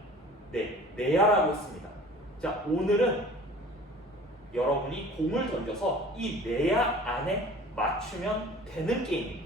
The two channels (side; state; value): both; normal; correlation 0.45